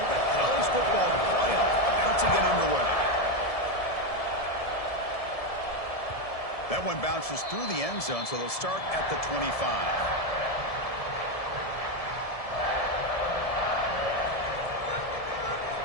The college football playoff about to get underway. That one bounces through the end zone, so they'll start at the 25.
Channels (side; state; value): right; late; 1.7 ms